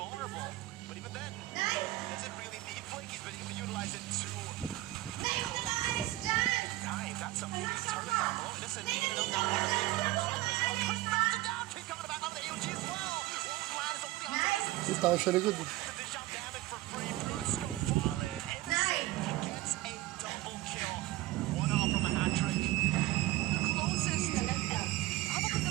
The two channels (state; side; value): quieter; left; 17.3 dB